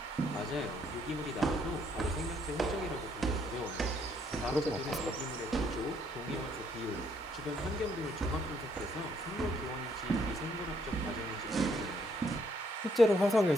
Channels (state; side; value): normal; both; correlation 0.69